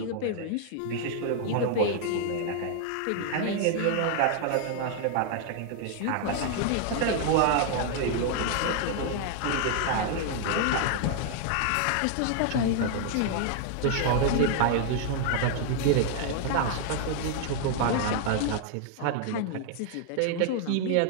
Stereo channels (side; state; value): both; different; correlation 0.00